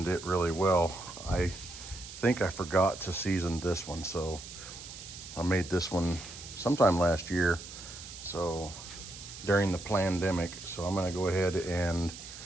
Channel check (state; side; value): noise; right; hiss, 13 dB below the sound